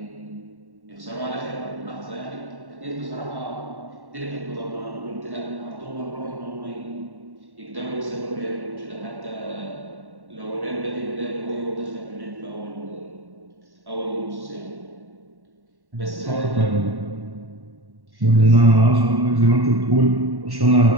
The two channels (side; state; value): left; late; 1.1 ms